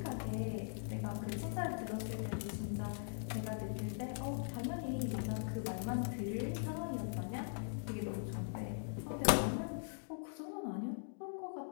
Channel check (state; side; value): silent; right; digital silence